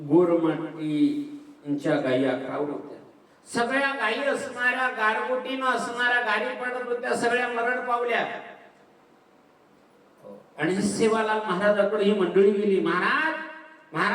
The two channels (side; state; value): both; identical; correlation 1.00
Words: गोरमाटीच्या गायी आखावत होत्या. सगळ्या गायी असणाऱ्या गारगोटीनं असणाऱ्या गायी पडत होत्या. सगळ्या मरण पावल्या. आणि सेवालाल महाराजाकडे ही मंडळी गेली. महाराज